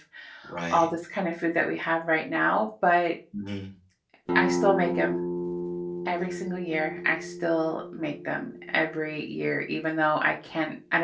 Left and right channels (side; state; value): both; identical; correlation 1.00